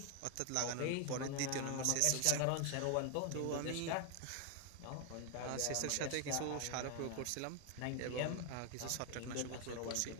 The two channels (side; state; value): both; different; correlation 0.00